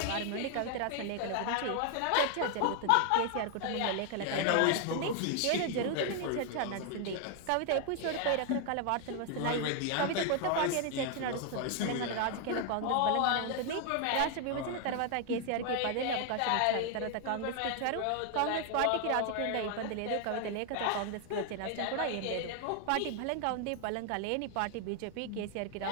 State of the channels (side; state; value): both; different; correlation 0.00